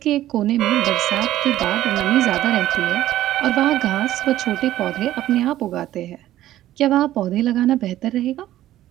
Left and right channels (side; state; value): left; quieter; 13.8 dB